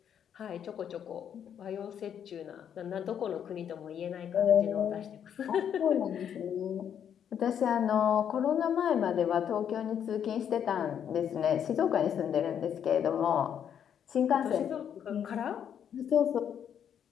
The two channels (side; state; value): right; quieter; 8.8 dB